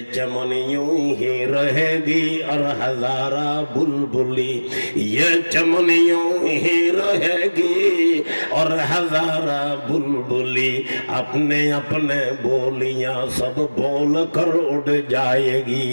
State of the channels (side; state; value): both; inverted; correlation -1.00